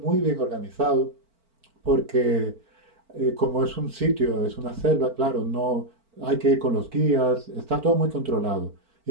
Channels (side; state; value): left; late; 4.4 ms